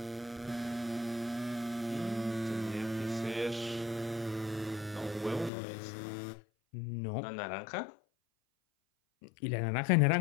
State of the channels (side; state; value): right; drops out; at 5.5 s